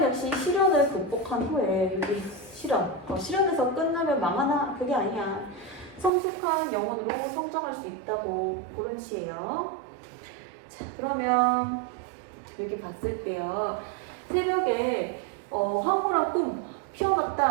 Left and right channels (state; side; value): drops out; left; at 6.1 s